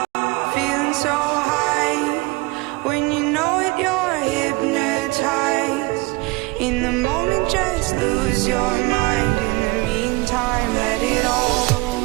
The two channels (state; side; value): quieter; left; 23.8 dB